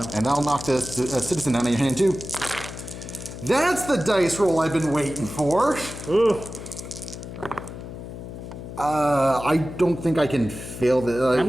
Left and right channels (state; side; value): noise; left; hum, 11 dB below the sound